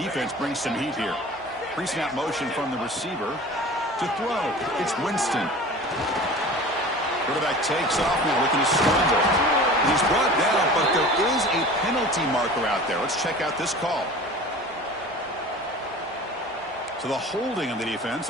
brings some heat here. Pre-snap motion from the receiver to throw. It's Winston. Quarterback takes off now, looking to scramble. He's brought down, but there is a penalty marker out there. Let's check out this call. So the holding of the defense,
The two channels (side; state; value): both; normal; correlation 0.39